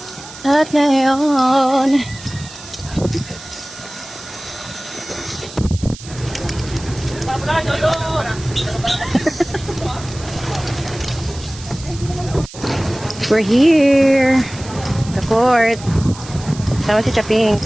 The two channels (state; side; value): noise; right; hiss, 16 dB below the sound